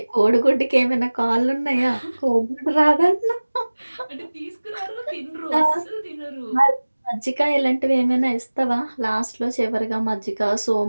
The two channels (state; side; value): inverted; both; correlation -1.00